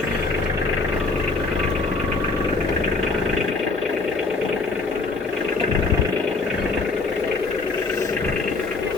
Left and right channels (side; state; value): right; quieter; 3.8 dB